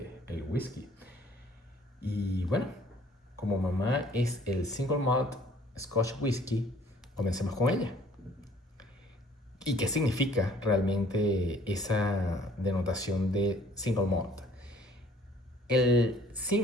del whisky. Y bueno, como mamá es el single malt Scotch Whisky, comencemos con ella. ¿Y qué significa realmente esa denotación de single malt? El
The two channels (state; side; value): normal; both; correlation 0.57